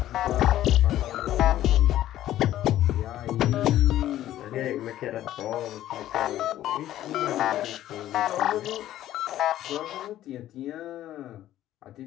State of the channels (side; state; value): right; quieter; 13.2 dB